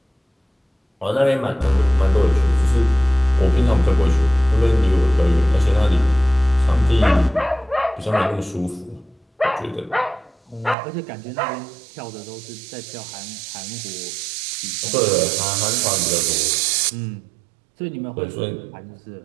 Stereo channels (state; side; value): drops out; left; at 10.8 s